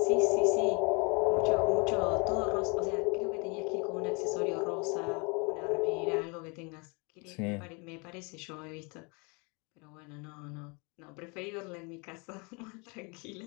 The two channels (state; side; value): quieter; right; 31.6 dB